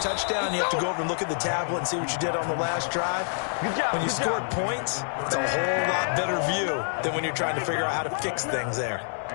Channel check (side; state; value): right; silent; digital silence